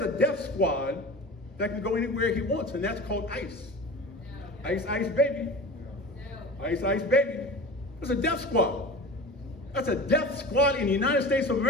a death squad that can go anywhere he wants, and that's called ICE. No. ICE, baby. No. ICE, baby. It's a death squad. That's a death squad in the United States of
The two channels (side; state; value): both; normal; correlation 0.35